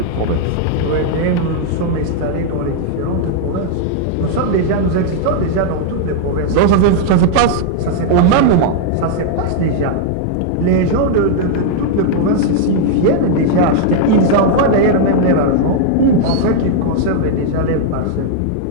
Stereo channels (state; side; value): different; both; correlation 0.00